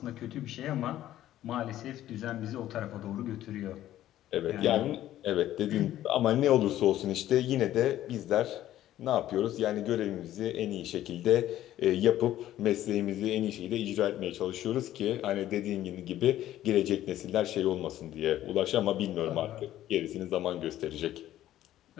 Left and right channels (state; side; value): quieter; right; 13.2 dB